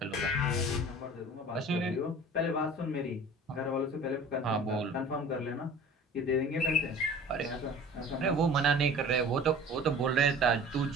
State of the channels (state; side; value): normal; both; correlation 0.43